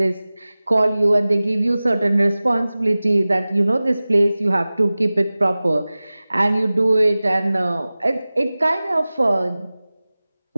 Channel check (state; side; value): inverted; both; correlation -0.98